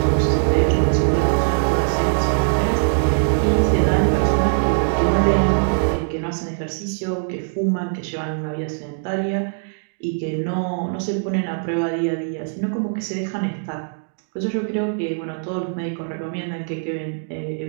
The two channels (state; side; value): silent; left; digital silence